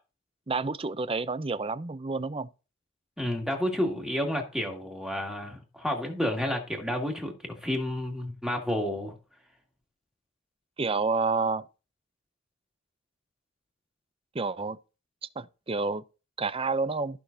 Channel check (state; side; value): normal; both; correlation 0.46